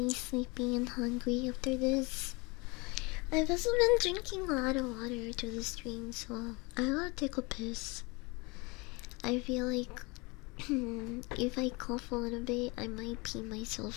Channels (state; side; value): quieter; right; 27.0 dB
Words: sleepy and hungry after this. I've also been drinking a lot of water to the stream, so I gotta take a piss. I feel like if I cough a little bit, I might pee